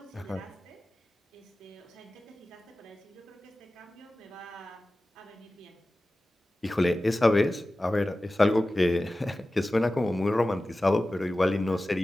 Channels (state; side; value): normal; both; correlation 0.95